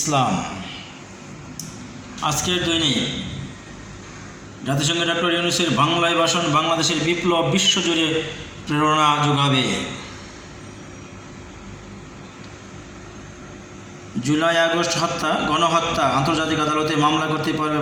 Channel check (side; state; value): both; identical; correlation 1.00